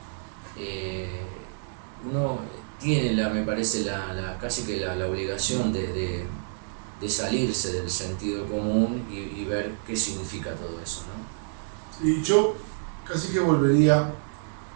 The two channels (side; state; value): left; silent; digital silence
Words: uno tiene me parece casi que la obligación de salirse del sentido común y ver qué significa todo eso, ¿no? Y yo casi que voy a